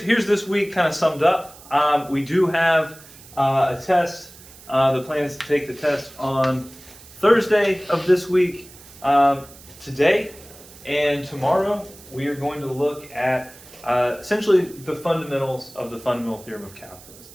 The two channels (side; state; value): right; noise; hiss, 21 dB below the sound